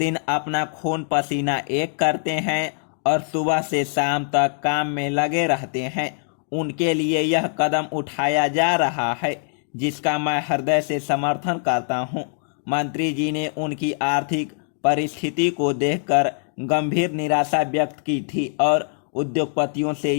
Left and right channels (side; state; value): right; silent; digital silence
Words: अपना खून पसीना एक करते हैं और सुबह से शाम तक काम में लगे रहते हैं, उनके लिए यह कदम उठाया जा रहा है, जिसका मैं हृदय से समर्थन करता हूं। मंत्री जी ने उनकी आर्थिक परिस्थिति को देखकर गंभीर निराशा व्यक्त की थी और उद्योगपतियों से